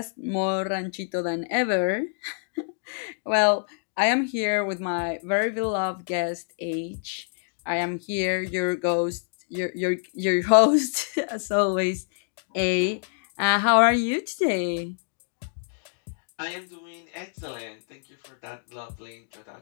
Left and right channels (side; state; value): right; silent; digital silence